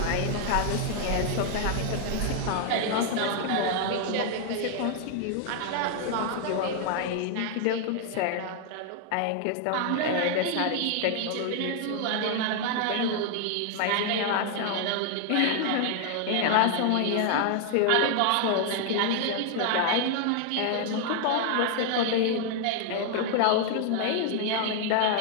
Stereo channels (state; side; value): different; both; correlation 0.00